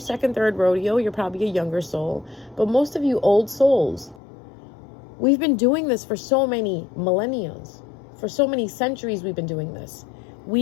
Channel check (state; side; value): drops out; right; at 4.2 s